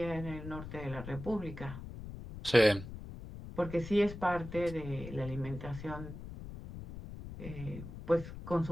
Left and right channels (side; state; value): left; noise; rumble, 11 dB below the sound